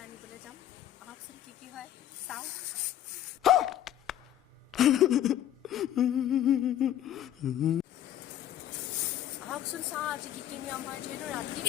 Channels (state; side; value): quieter; right; 11.6 dB